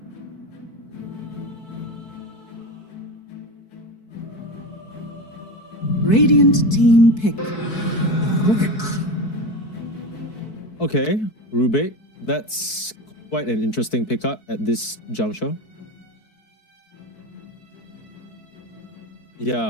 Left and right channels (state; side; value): late; right; 4.6 ms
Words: Radiant team pick. Okay, Rubik. That's quite an interesting pickup at this juncture.